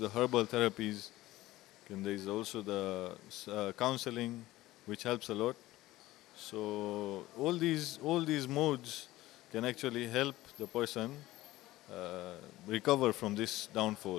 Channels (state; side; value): quieter; right; 17.0 dB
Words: herbal therapies And there is also the counseling, which helps a lot. So all these modes can actually help the person recover from this